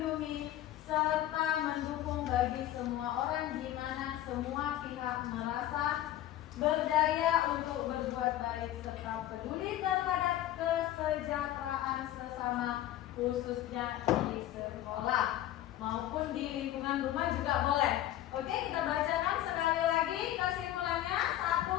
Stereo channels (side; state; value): right; quieter; 13.3 dB